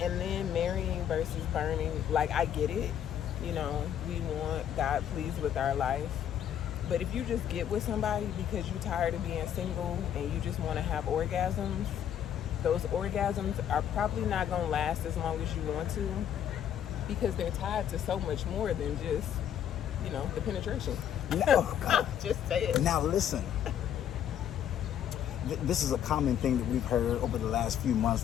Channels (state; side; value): quieter; right; 9.8 dB